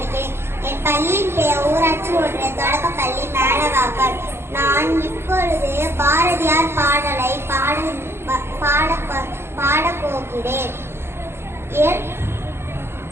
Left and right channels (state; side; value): late; left; 0.12 ms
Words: என் பள்ளியின் பெயர் ஊராட்சி ஒன்றிய தொடக்கப்பள்ளி மேலவாக்கம். நான் இப்பொழுது பாரதியார் பாடலை பாடப்போகிறேன்.